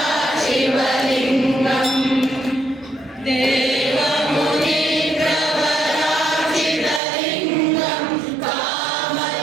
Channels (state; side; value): drops out; left; at 7.0 s